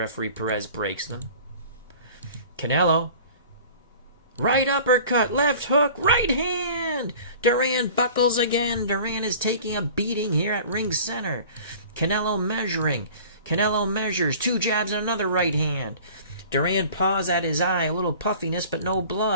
Perez breaks them. Canelo. Right uppercut, left hook, right hand. Duran buckles again. Duran is taking a beating here at ring center. Canelo measuring. Canelo measures. 2 jabs and another right hand. Duran paws at his eye. A little puffiness, but no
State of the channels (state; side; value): inverted; both; correlation -0.44